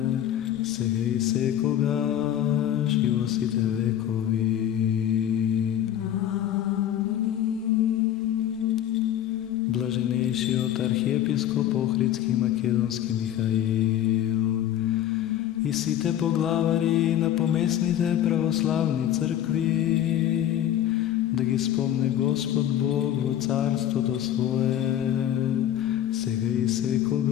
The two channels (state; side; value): quieter; right; 11.2 dB